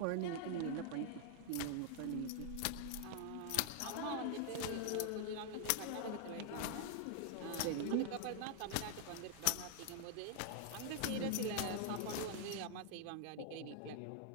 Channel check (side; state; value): both; different; correlation 0.00